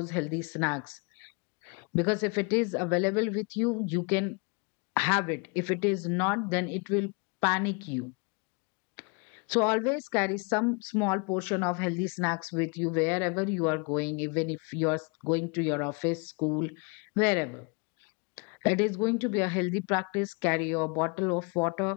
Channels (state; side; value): quieter; right; 32.8 dB